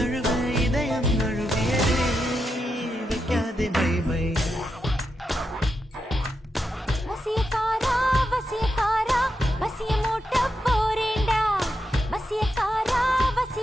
இதயம் நழுவியதே வைக்காதே மை வசியக்காரா வசியக்காரா வசிய மூட்ட போறேண்டா வசியக்காரா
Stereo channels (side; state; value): both; normal; correlation 0.85